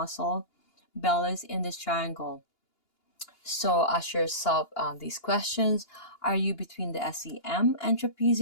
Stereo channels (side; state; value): right; late; 2.8 ms